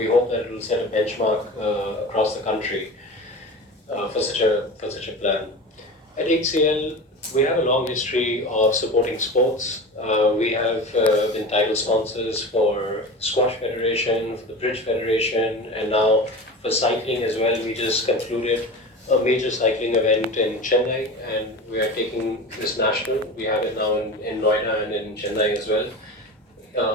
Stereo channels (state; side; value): normal; both; correlation 0.31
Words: hope that it will set a benchmark across the country for such a plan. At HCL, we have a long history of supporting sports. We have been title sponsors for Squash Federation, for the Bridge Federation, and now for cycling as well. We just concluded a major cycling event in Chennai, and we are taking this national. We have it now in Noida and in Chennai as well.